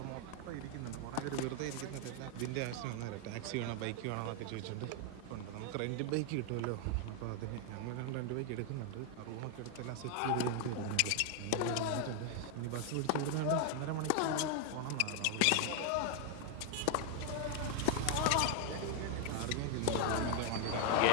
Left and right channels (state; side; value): different; both; correlation 0.00